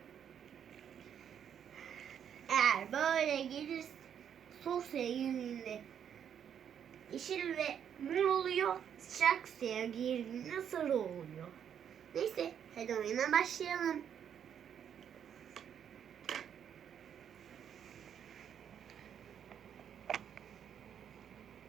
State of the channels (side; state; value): left; quieter; 8.6 dB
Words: Eğer böyle gelirse soğuk suya girdiğinde yeşil ve mor oluyor. Sıcak suya girdiğinde sarı oluyor. Neyse, hadi oyuna başlayalım.